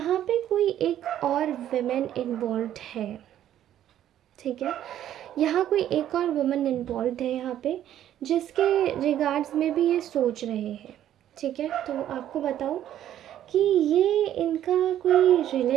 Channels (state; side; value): quieter; left; 11.5 dB